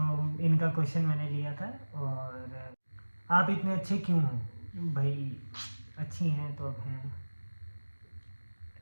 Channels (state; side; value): inverted; both; correlation -1.00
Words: इनका क्वेश्चन मैंने लिया था। और आप इतने अच्छे क्यों हो? भाई अच्छी हैं तो अब हैं।